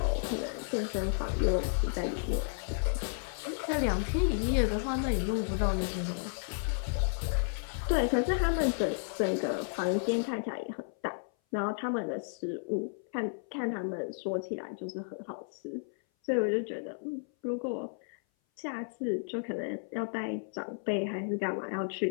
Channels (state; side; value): silent; right; 56 dB below the other